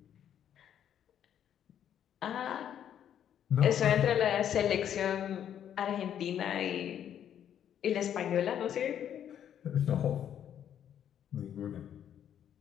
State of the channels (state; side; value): quieter; right; 9.7 dB